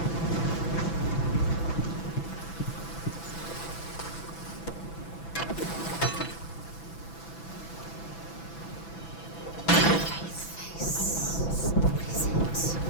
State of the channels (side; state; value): right; late; 6.0 ms